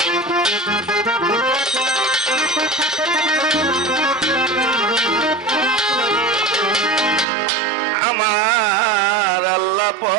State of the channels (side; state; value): left; drops out; at 7.2 s